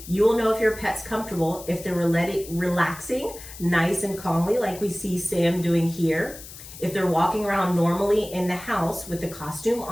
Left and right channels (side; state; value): left; noise; hiss, 15 dB below the sound